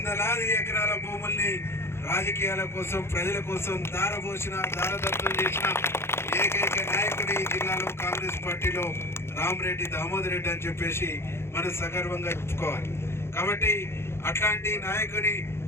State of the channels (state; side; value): late; right; 0.12 ms